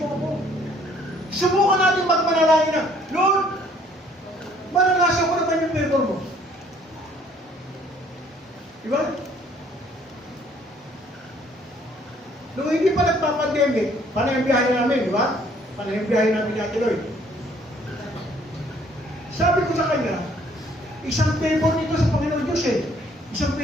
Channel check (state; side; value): normal; both; correlation 0.61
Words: ako. Subukan natin magmanalangin na, Lord, maranasan ko naman yung favor mo. Diba? Nung hindi pa nagpa-pandemic, panay ang biyahe namin, di ba? Panay ang biyahe namin ni Ate Lloyd. Sabi ko sa kanya, isang favor nito sa Panginoon Diyos eh. Isang